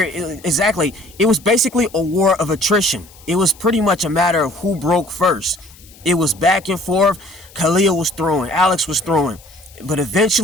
it was basically a war of attrition. It was pretty much a matter of who broke first. It was back and forth. Khalil was throwing, Alex was throwing. But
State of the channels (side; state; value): left; noise; hiss, 24 dB below the sound